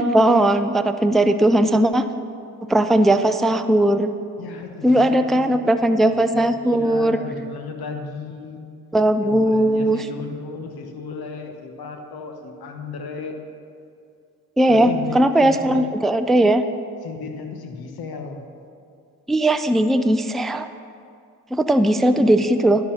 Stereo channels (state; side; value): normal; both; correlation 0.82